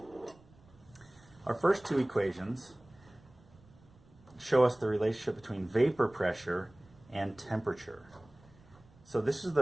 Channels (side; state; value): right; noise; rumble, 27 dB below the sound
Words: Our first two equations show us the relationship between vapor pressure and temperature. So this is